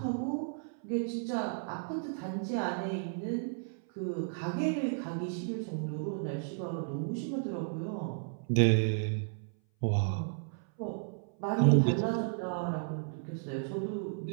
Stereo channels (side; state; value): left; silent; 55 dB below the other